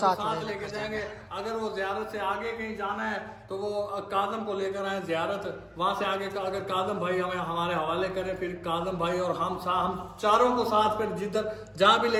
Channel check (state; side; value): identical; both; correlation 1.00